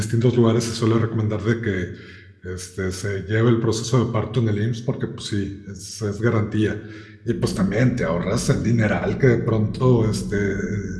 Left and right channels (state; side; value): identical; both; correlation 1.00